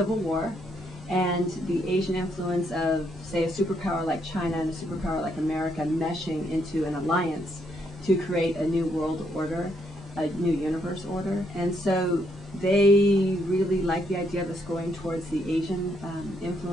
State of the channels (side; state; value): both; normal; correlation 0.74